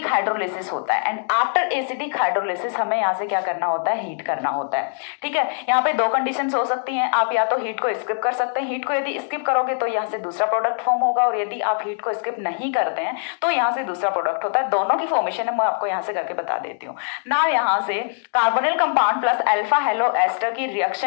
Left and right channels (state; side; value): silent; right; digital silence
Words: हाइड्रोलिसिस होता है. एंड आफ्टर एसिडिक हाइड्रोलिसिस हमें यहाँ से क्या करना होता है, हीट करना होता है. ठीक है, यहाँ पे दो कंडीशंस हो सकती हैं, आप या तो हीट को स्किप कर सकते हैं. हीट को यदि स्किप करोगे तो यहाँ से दूसरा प्रोडक्ट फॉर्म होगा, और यदि आप हीट को स्किप नहीं करते हैं तो यहाँ से दूसरा प्रोडक्ट होता है. दोनों की फॉर्मेशन है मैं आपको यहाँ से करके बता देती हूँ ना. यहाँ से carbonyl compound plus alpha halo ester की